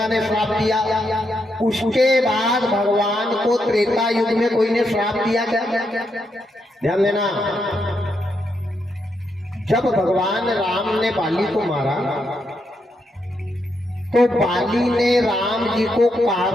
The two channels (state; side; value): normal; both; correlation 0.81